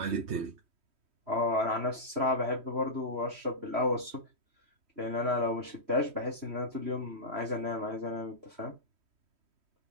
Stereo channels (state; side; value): late; left; 3.1 ms